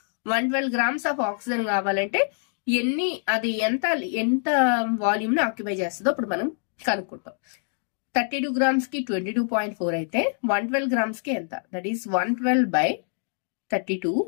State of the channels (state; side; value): silent; right; digital silence